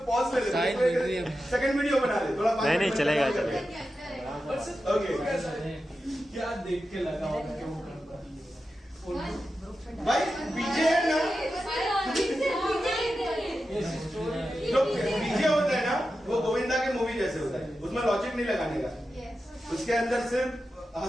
पॉज ले ले, सेकंड वीडियो बना ले थोड़ा। नहीं चलेगा। ओके, क्या देख के लगा होगा कि वो गणपति है? भाई पीछे है ना, जो पीछे होता है ना वो गोविंदा के मूवी जैसे होता है, उसमें लॉजिक नहीं लगाने का, उसके अंदर सिर्फ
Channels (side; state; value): both; normal; correlation 0.91